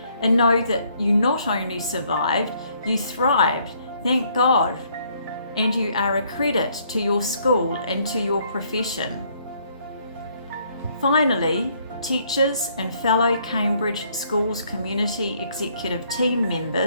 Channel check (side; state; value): both; inverted; correlation -0.66